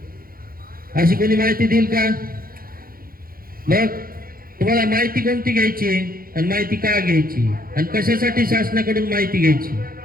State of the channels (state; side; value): late; left; 0.42 ms